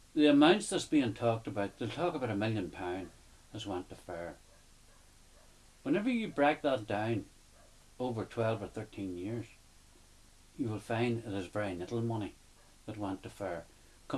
the amounts that's being talked about, they'll talk about £1 million has went to FAIR. Whenever you break that down over 12 or 13 years, you will find it is very little money that went to FAIR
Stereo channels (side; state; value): both; identical; correlation 1.00